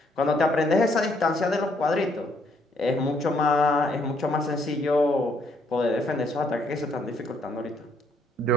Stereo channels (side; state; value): both; normal; correlation 0.69